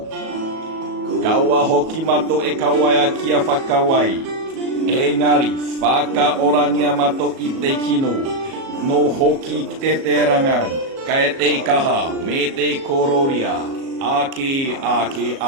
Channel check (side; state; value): left; late; 37 ms